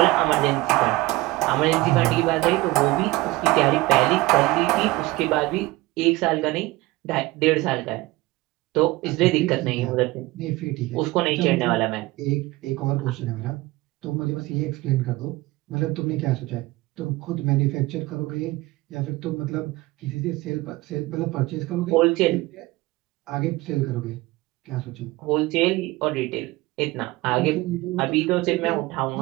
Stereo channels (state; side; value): quieter; left; 19.8 dB